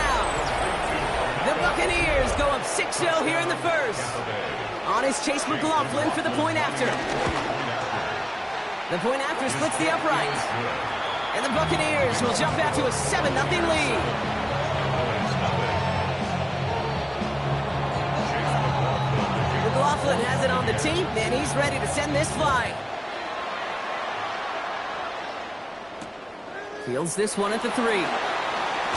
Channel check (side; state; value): both; identical; correlation 1.00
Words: The Buccaneers go up 6-0 here in the first. On is Chase McLaughlin for the point after. The point after splits the uprights. And the Buccaneers will jump out to a 7-0 lead. McLaughlin has it on the team, and he's ready to send this flight. Fields this one at the 3.